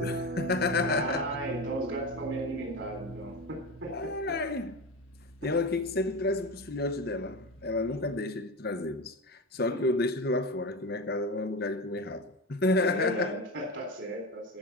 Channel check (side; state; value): both; normal; correlation 0.23